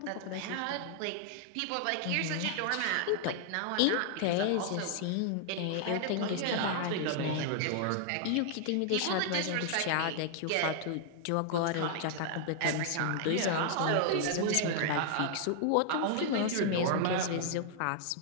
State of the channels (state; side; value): different; both; correlation 0.00